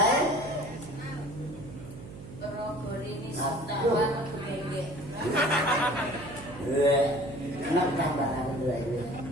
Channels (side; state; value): right; noise; hum, 14 dB below the sound